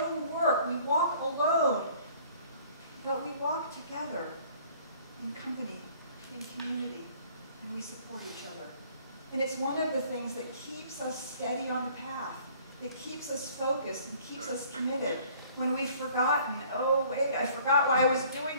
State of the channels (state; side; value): inverted; both; correlation -0.55